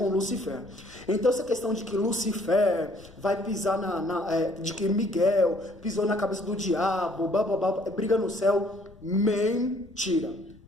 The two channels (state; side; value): noise; left; rumble, 24 dB below the sound